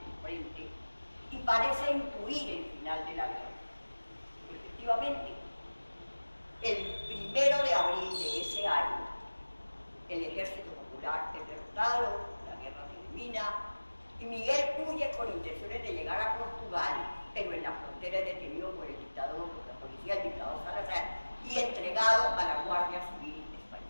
frente y parece intuir el final de la guerra. Efectivamente, el 1 de abril de ese año, el Ejército Popular es derrotado, la guerra termina, y Miguel huye con intenciones de llegar a Portugal, pero en la frontera es detenido por el dictador, por la policía, el dictador Salazar, y entregado a la Guardia Civil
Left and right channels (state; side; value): inverted; both; correlation -1.00